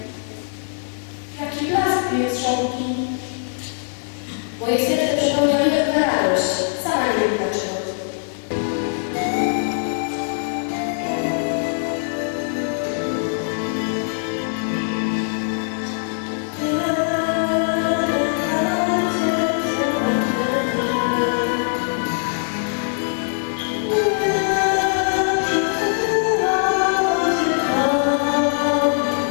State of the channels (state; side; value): silent; right; digital silence